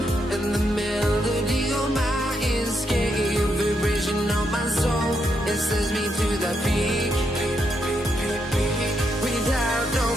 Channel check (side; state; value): both; normal; correlation 0.80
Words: and the melody on my escape, vibration on my soul, it sends me to the peak. Without no